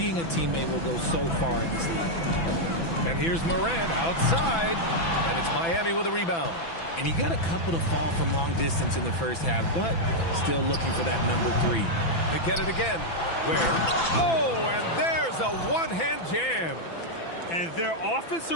a teammate will go so far in this league. And here's Morant outside. And it's Miami with a rebound. And he got a couple to fall from long distance in the first half, but still looking for that number 3. They get it again. Where? Oh, and there's a one-hand jam. And their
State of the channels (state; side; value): late; right; 6.0 ms